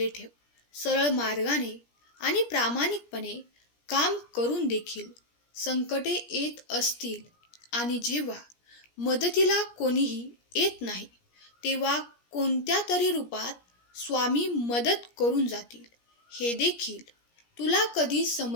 ठेव. सरळ मार्गाने आणि प्रामाणिकपणे काम करून देखील संकटे येत असतील आणि जेव्हा मदतीला कोणीही येत नाही तेव्हा कोणत्या तरी रूपात स्वामी मदत करून जातील, हे देखील तुला कधी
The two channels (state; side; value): late; right; 17 ms